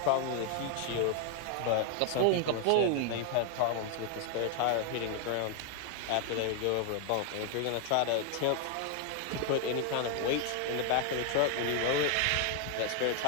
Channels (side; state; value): both; different; correlation 0.01